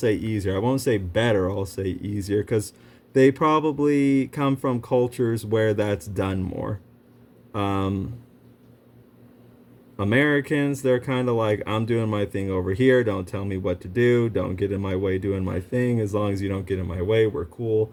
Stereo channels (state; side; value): identical; both; correlation 1.00